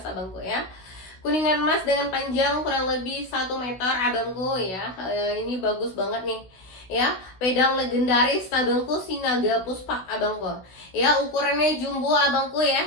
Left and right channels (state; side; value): late; right; 16 ms